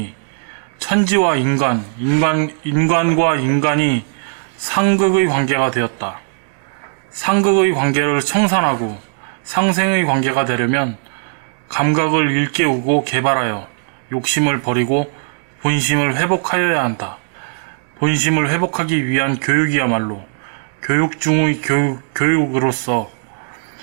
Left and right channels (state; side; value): silent; left; digital silence